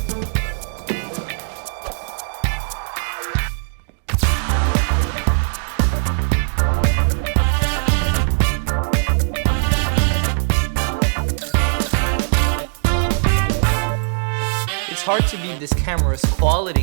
It's hard to beat this camera's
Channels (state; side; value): silent; left; digital silence